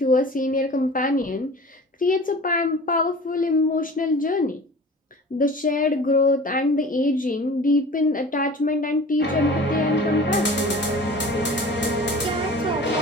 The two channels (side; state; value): both; normal; correlation 0.41